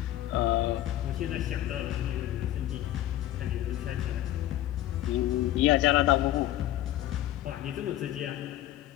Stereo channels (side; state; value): right; quieter; 13.8 dB